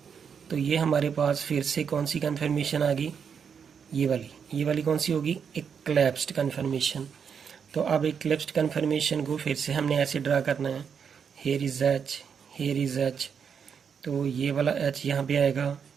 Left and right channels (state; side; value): quieter; left; 7.0 dB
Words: तो ये हमारे पास फिर से कौन सी कन्फर्मेशन आ गई, ये वाली कौन सी होगी, एक्लिप्स्ड कन्फर्मेशन। तो अब एक्लिप्स्ड कन्फर्मेशन को फिर से हमने ऐसे ड्रा करना है, here is H, here is H। तो ये वाला H यहाँ पे आएगा,